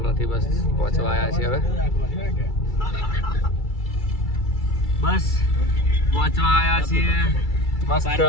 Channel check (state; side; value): late; right; 2.3 ms